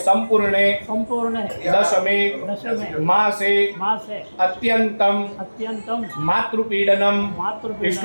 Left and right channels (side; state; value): both; inverted; correlation -1.00